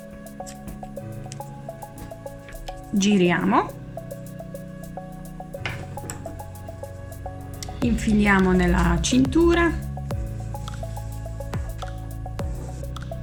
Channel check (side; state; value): both; identical; correlation 1.00